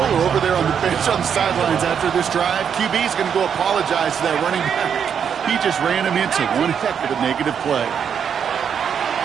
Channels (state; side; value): quieter; left; 7.6 dB